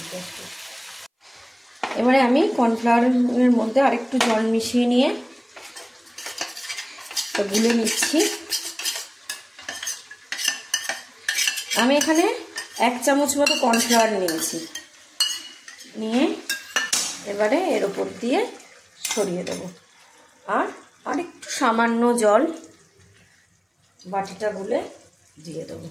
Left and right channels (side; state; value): both; identical; correlation 1.00